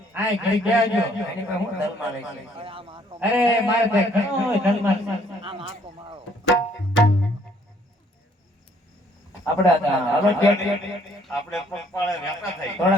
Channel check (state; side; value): normal; both; correlation 0.64